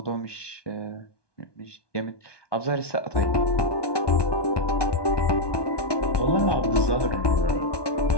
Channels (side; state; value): right; late; 1.2 ms